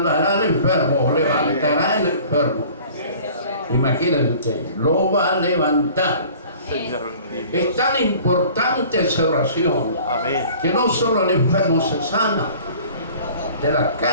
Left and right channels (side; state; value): both; inverted; correlation -0.48